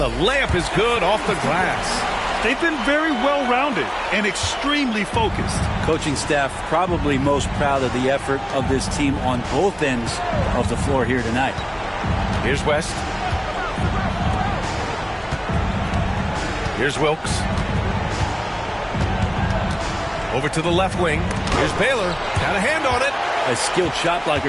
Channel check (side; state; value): both; identical; correlation 1.00